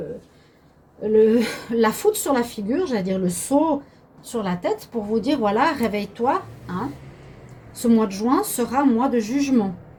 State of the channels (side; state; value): both; identical; correlation 1.00